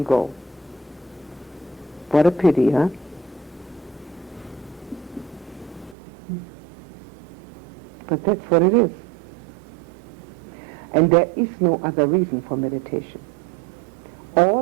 go. What a pity, huh? But that's what it is. And there is no other reason for meditation.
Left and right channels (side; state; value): left; drops out; at 6.0 s